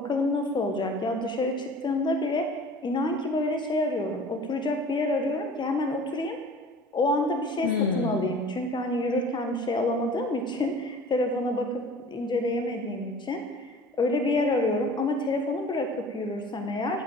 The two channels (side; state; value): both; normal; correlation 0.44